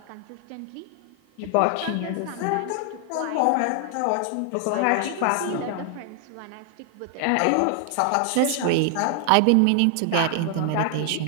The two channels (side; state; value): both; different; correlation 0.00